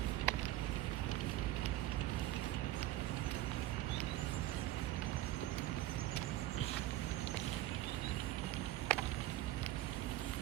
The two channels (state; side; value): quieter; left; 15.0 dB